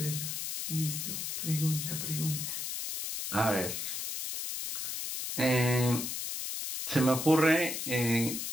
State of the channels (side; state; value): left; noise; hiss, 4 dB below the sound